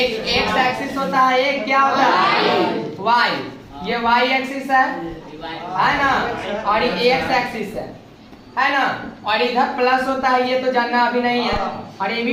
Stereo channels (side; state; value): both; identical; correlation 1.00